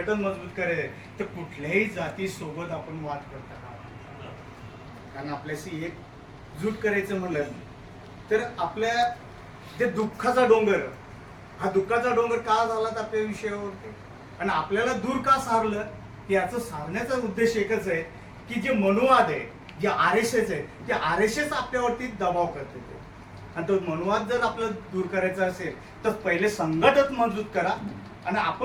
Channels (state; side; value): identical; both; correlation 1.00